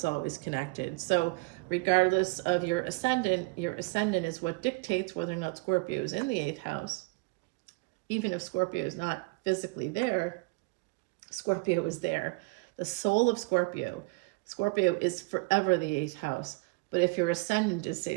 always connected. So regardless of your ascendant is what dictates whether or not Scorpio is in the 8th house. Even if Scorpio is not physically there, Scorpio is there. The soul of Scorpio is forever the 8th house. But if your ascendant is, say,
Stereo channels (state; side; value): quieter; left; 27.4 dB